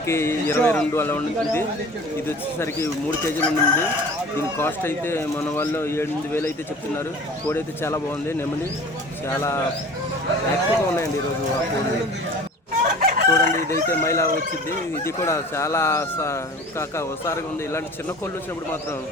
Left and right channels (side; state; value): both; normal; correlation 0.42